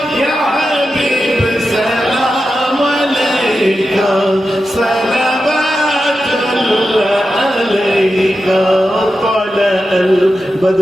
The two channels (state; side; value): normal; both; correlation 0.90